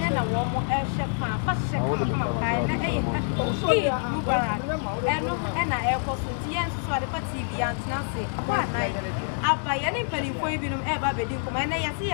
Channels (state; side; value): silent; right; digital silence